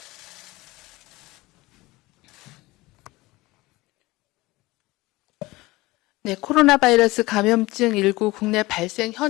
네, 코로나 바이러스 감염증 19 국내 발생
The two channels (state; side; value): quieter; right; 20.6 dB